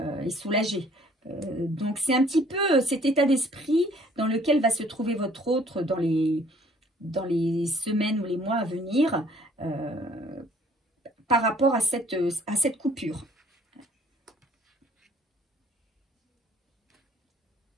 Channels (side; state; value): both; normal; correlation 0.59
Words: soulagé. Donc c'est un petit peu cet état d'esprit dans lequel va se trouver votre autre dans les semaines ou les mois à venir par rapport à cette coupure.